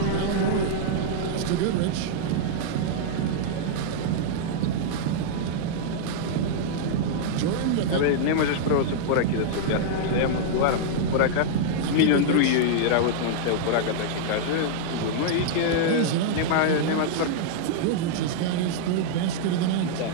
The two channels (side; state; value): both; different; correlation -0.02